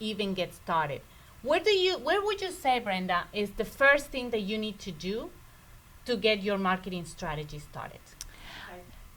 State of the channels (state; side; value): identical; both; correlation 1.00